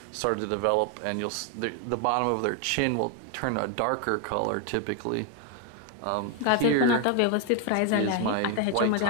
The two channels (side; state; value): both; different; correlation 0.01